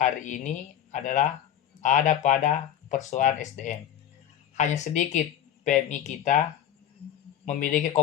ini adalah ada pada persoalan SDM. Hanya sedikit PMI kita memiliki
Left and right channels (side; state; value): right; quieter; 10.6 dB